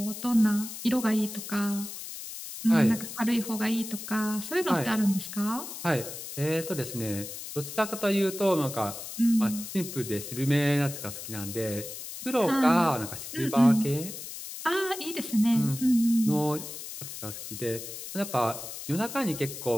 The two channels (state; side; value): noise; left; hiss, 10 dB below the sound